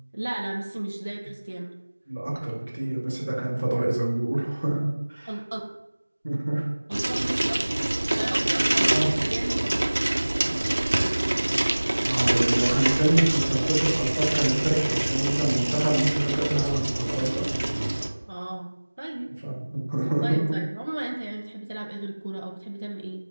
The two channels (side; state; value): both; inverted; correlation -1.00